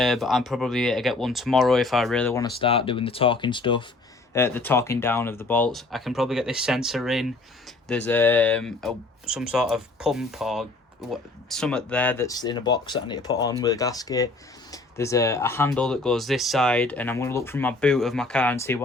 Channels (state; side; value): quieter; right; 3.2 dB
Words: I'm probably going to get one tomorrow if I really want to start doing the torquing stuff, the torquing down of the bolts. I can probably get this sensor in. There's some sort of pump or something there that's in a box that I need to put on with a gasket. There's a handle that goes this side, and I'm going to look through my boot of my car and see